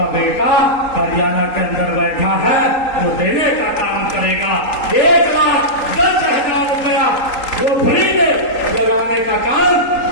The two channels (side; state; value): right; late; 3.8 ms